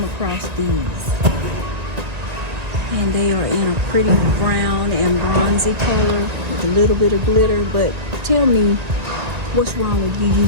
across these and they are in a pretty brown and bronzy color with a little bit of glitter. But tell me, what's wrong with you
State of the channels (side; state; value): left; late; 1.9 ms